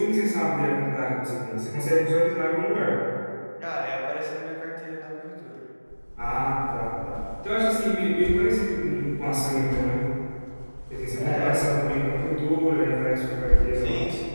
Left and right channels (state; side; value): inverted; both; correlation -1.00